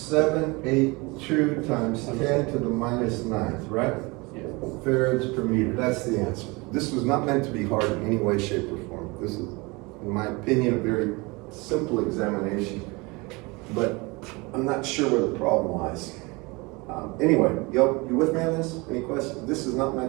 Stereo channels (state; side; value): quieter; left; 25.7 dB